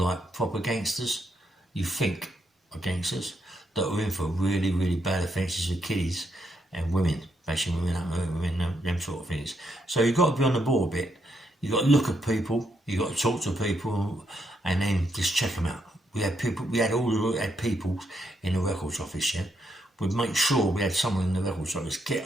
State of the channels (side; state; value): both; normal; correlation 0.78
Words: proper gangsters, you think are gangsters, that are in for really, really bad offences with kiddies and women, bashing women up, them sort of things. So you've got to be on the ball a bit. You've got to look at people, you've got to talk to people, and then just check them out. We had people in the records office, yeah? We'd make sure we had someone in the records office,